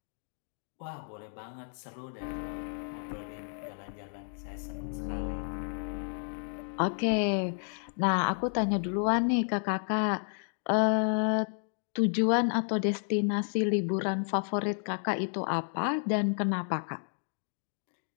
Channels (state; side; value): silent; right; 57 dB below the other